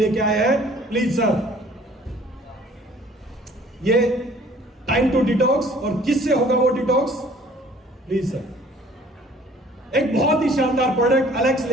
आए हैं। प्लीज सर, ये टाइम टू डिटॉक्स। और किससे होगा वो डिटॉक्स? Please sir. एक बहुत ही शानदार प्रोडक्ट एलेक्स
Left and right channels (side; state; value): both; normal; correlation 0.54